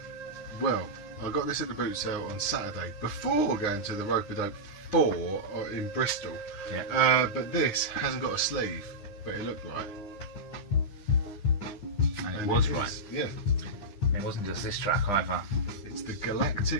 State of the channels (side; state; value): right; late; 9.9 ms